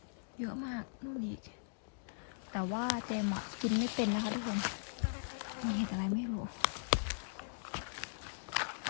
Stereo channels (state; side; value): silent; right; digital silence